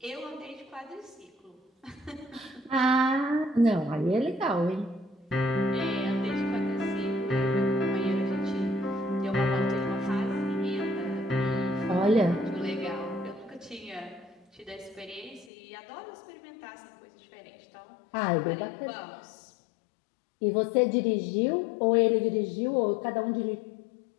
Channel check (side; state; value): right; drops out; at 15.5 s